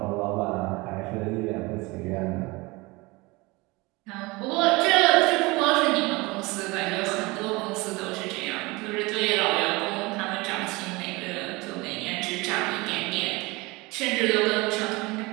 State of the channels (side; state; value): left; quieter; 23.7 dB